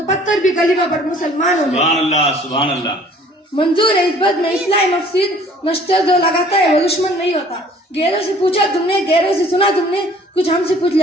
पत्थर भी कलीमा पर मुसलमान हो गए। सुभान अल्लाह, सुभान अल्लाह। मंजूर है इस बात में इस्लाम मफसीद नश्तर जो लगाता है वो दुश्मन नहीं होता। गैरों से पूछा तुमने, गैरों से सुना तुमने, कुछ हमसे पूछ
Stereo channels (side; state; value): both; normal; correlation 0.54